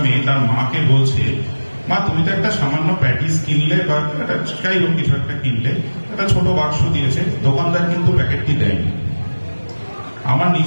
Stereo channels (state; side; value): inverted; both; correlation -1.00